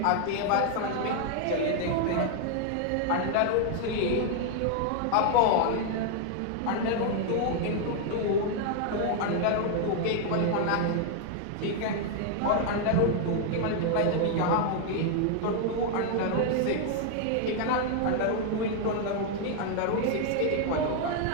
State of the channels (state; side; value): different; both; correlation 0.00